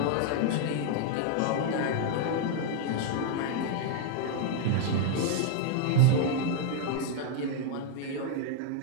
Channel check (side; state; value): both; different; correlation 0.00